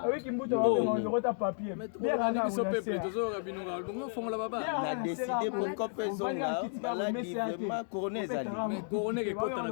fond là-bas. On a décidé pour qu'on fasse ça, maladie vraiment couronné Zali. Mais couronné qui compte dans la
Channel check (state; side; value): silent; right; digital silence